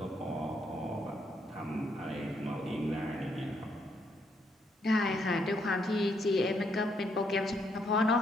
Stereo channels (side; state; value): both; normal; correlation 0.74